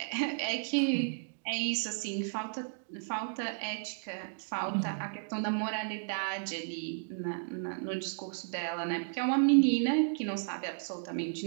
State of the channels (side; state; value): left; silent; digital silence